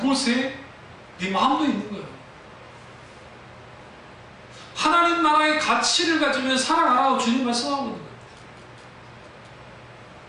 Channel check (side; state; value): both; identical; correlation 1.00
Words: 네 마음도 있는 거예요. 하나님 나라의 가치를 가지면 살아가라고 주님 말씀하고 있는 거예요.